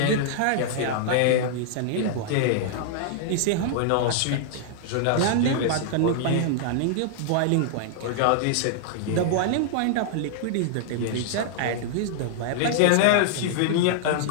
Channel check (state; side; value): different; both; correlation -0.01